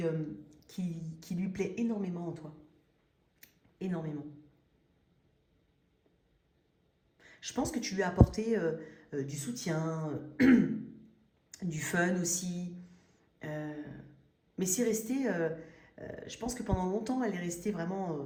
lui plaît énormément en toi. Énormément. Je pense que tu lui as apporté du soutien, du fun aussi. Mais c'est resté... je pense que pendant longtemps, elle est restée vraiment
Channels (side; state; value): both; identical; correlation 1.00